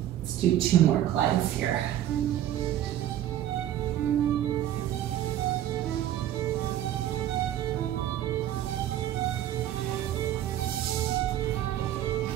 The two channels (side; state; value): left; quieter; 12.1 dB